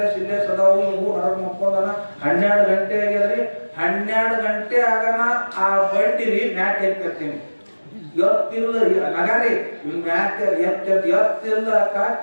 ಸಿಲ್ಲೇ ಸದಾವು. ಊರ್ ಹೊರಗೆ ಮುಕ್ಕೊಂಡನ 12 ಗಂಟೆ ಆಗ್ಯದ್ರಿ. 12 ಗಂಟೆ ಆಗನ ಆ ಬಂಡಿರಿ ಮ್ಯಾಕ್ ಎತ್ತಿರ್ತೀನಿ. ಎತ್ತಿಲ್ಲ ನಗಾರಿ ಮ್ಯಾಕ್ ಎತ್ತಿಲ್ಲ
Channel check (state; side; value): inverted; both; correlation -1.00